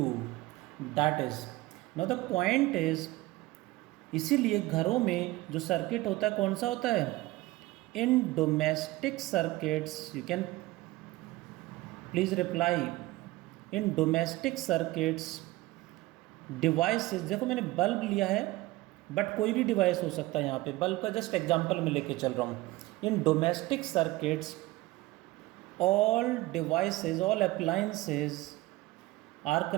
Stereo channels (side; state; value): left; quieter; 19.1 dB